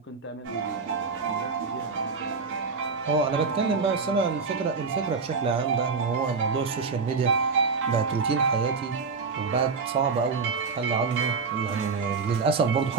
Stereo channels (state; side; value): quieter; left; 4.9 dB